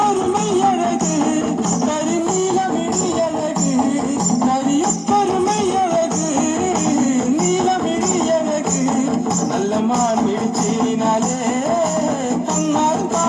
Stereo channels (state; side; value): identical; both; correlation 1.00